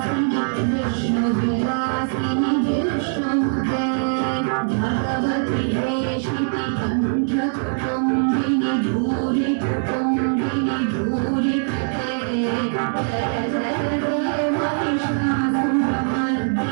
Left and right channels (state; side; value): silent; left; 64 dB below the other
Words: विष्णुविलासिनि विष्णुमुते भगवति वेशिति कण्ठकुटुम्बिनि भूरि कुटुम्बिनि भूरि कृते जय जय जय